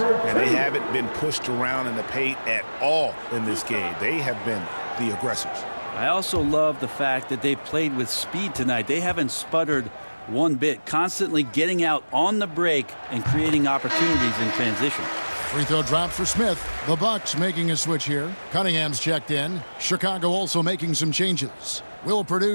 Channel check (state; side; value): inverted; both; correlation -1.00